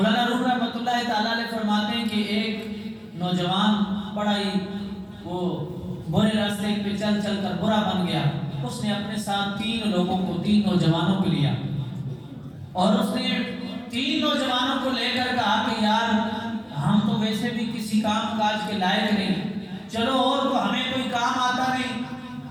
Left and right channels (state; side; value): identical; both; correlation 1.00